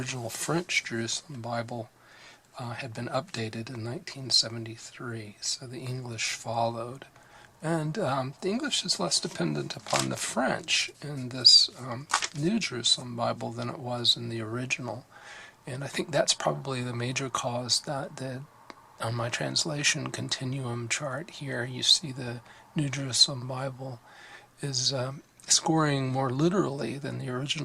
French Jerusalem Bible had been updated in 1973, so the English followed. And the English is less dependent upon the French in this New Jerusalem Bible than it was in the original. And I think that's probably the major cause that on my translation continuum chart here, you see the New Jerusalem Bible is scoring more literally than the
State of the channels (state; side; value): identical; both; correlation 1.00